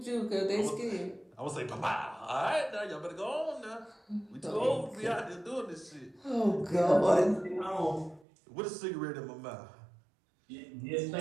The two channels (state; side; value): drops out; left; at 8.2 s